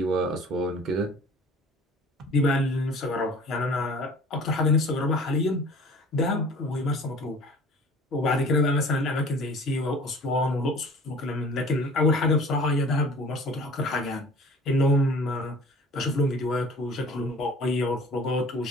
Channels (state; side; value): normal; both; correlation 0.47